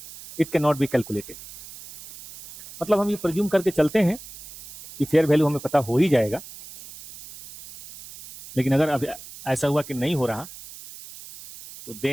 it can not be calculated. मतलब हम ये प्रिज्यूम करके चलते हैं कि फेयर वैल्यू हमें पता हो ही जाएगा, लेकिन अगर अब ऐसा हुआ कि नहीं हो रहा तो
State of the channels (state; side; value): noise; right; hiss, 16 dB below the sound